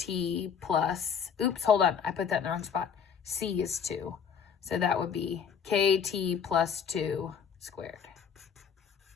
plus, oops, hold on, I put that in the wrong spot. C is 2. So that would be kt plus 2 squared.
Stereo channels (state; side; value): quieter; right; 7.1 dB